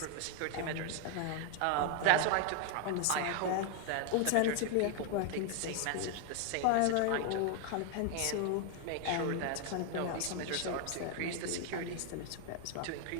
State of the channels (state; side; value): different; both; correlation 0.00